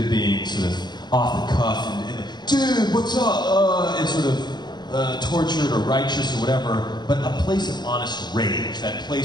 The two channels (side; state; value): right; late; 0.21 ms